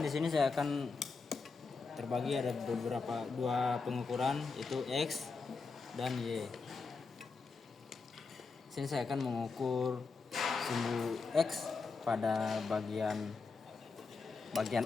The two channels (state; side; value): quieter; right; 4.5 dB